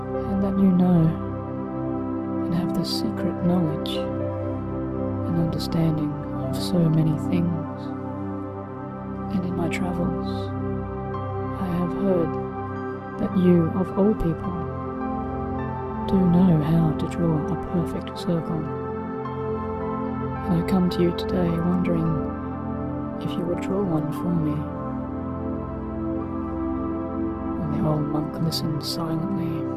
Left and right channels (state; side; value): identical; both; correlation 1.00